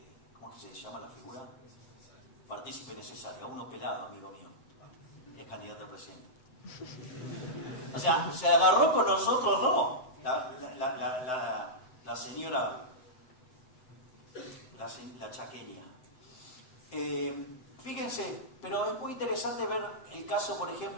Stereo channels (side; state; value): right; late; 7.9 ms